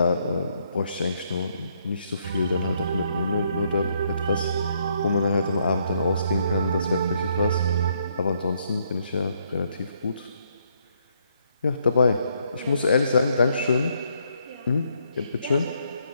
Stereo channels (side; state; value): both; inverted; correlation -0.72